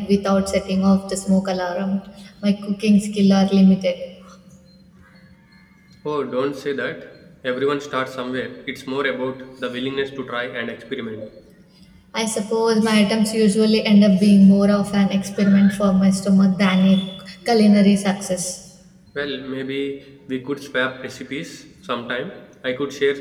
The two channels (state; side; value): identical; both; correlation 1.00